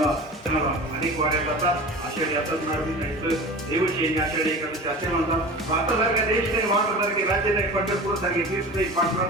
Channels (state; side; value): normal; both; correlation 0.35